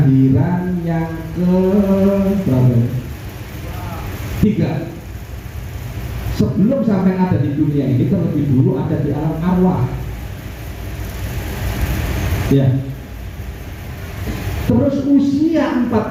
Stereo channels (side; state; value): both; identical; correlation 1.00